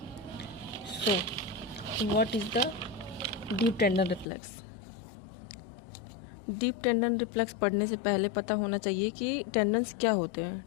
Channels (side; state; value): right; drops out; at 4.2 s